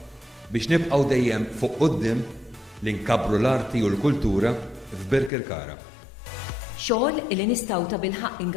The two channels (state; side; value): drops out; right; at 5.3 s